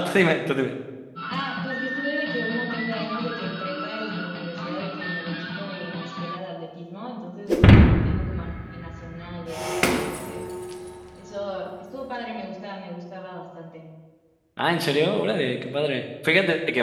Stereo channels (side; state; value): both; identical; correlation 1.00